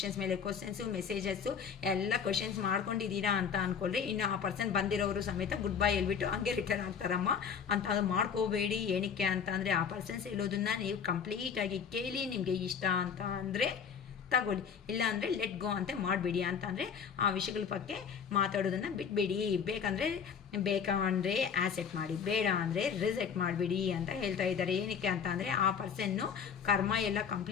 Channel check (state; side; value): quieter; right; 7.0 dB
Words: ಮೇಲೆ ಕ್ವಶನ್ಸು ಮೆಸೇಜಸ್ಸು ಎಲ್ಲ ಕ್ವಶನ್ಸ್ ಮಾಡ್ಕೊಂಡಿದ್ದೀರಾ ಅಂತ ಅನ್ಕೊಳ್ರಿ. ಇನ್ನು ಆ ಪರ್ಸನ್ ಬಂದಿರೋರು ಸಮೇತ ಗುಡ್ ಬೈ ಹೇಳ್ಬಿಟ್ಟು ಹಂಗೆ ರಿಟರ್ನ್ ಆಗ್ತಾರಮ್ಮ ಅಂತ. ಅದು ಮಾಡ್ಕೋಬೇಡಿ. ಏನಕ್ಕೆ ಅಂತ ಅಂದರೆ ಆ ಪರ್ಸನ್ಸ್ ಹೇಳೋದನ್ನ ನೀವು ಕಂಪ್ಲೀಟಾಗಿ ಕೇಳಿ ನಿಮಗೆ ಇಷ್ಟ ಅಂತ ಅಂದರೆ ತಗೊಳ್ಳಿ, ಇಲ್ಲ ಅಂದರೆ ಲೆಟ್ ಗೋ ಅಂತ ಮಾಡಬೇಡಿ. ಅಂತ ಅಂದರೆ ಆ ವಿಷಯಗಳ ಬಗ್ಗೆ ಮಾತಾಡೋದನ್ನು ಬಿಟ್ಬಿಡಿ. ಬೇಕಂದರೆ ಆಸೆಟ್ ಮಾಡಿ, ಬೇಡ ಅಂದರೆ ರಿಜೆಕ್ಟ್ ಮಾಡಿಬಿಡಿ ಅಂತ ಹೇಳ್ತಾ ಇದ್ದಾರೆ. ಏನಕ್ಕೆ ಅಂತ ಅಂದರೆ ಆ ಪರ್ಸನ್ನು ಕರ್ಮ ಎಲ್ಲ